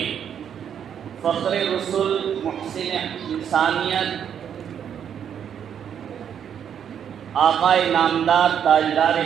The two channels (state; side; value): quieter; left; 8.6 dB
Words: فخر رسول، محسن انسانیت، آقا نامدار تاجدار